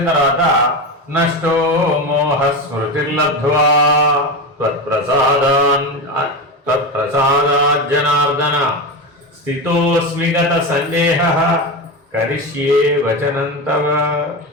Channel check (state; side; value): normal; both; correlation 0.19